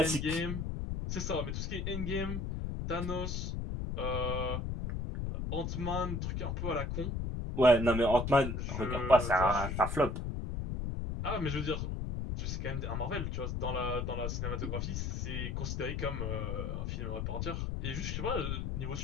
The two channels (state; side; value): noise; left; rumble, 2 dB below the sound